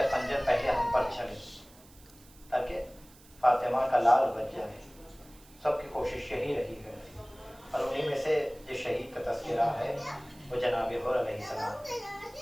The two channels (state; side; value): noise; right; hiss, 25 dB below the sound